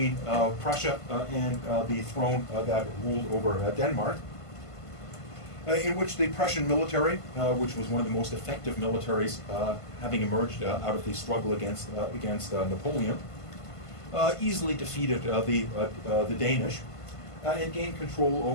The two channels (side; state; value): right; late; 1.5 ms